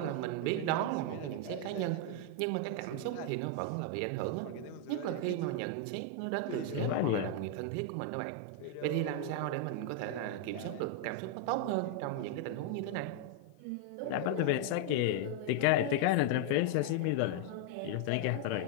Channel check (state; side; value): different; both; correlation 0.00